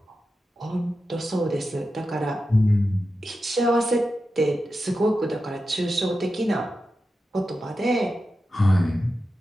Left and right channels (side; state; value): both; normal; correlation 0.91